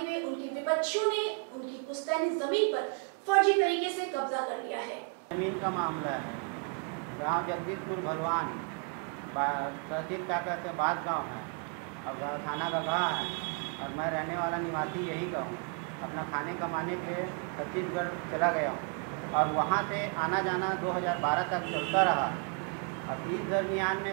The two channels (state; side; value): quieter; left; 38.4 dB